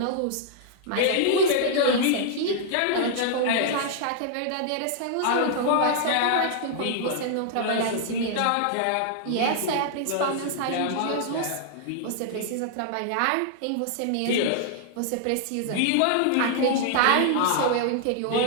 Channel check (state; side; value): different; both; correlation -0.01